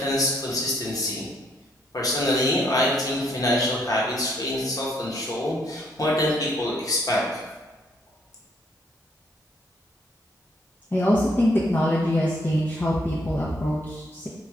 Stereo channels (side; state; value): both; normal; correlation 0.69